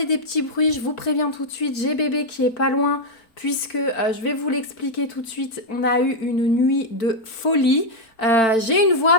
des petits bruits, je vous préviens tout de suite, j'ai bébé qui est pas loin, puisque je vais vous l'expliquer tout de suite. On a eu une nuit de folie. J'ai une voix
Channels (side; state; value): right; late; 4.5 ms